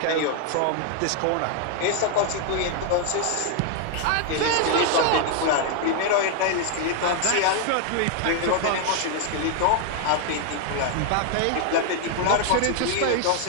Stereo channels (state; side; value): different; both; correlation 0.00